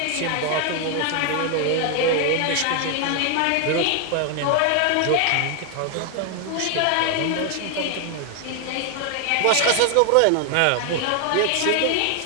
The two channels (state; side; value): different; both; correlation 0.00